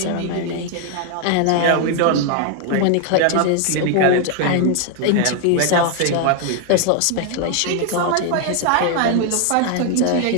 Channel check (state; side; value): different; both; correlation 0.00